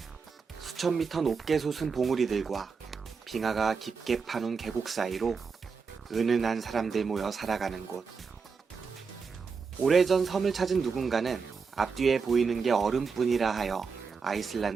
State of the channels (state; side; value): quieter; left; 5.4 dB